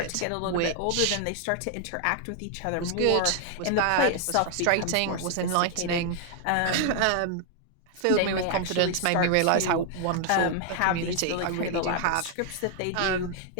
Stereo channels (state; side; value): different; both; correlation 0.00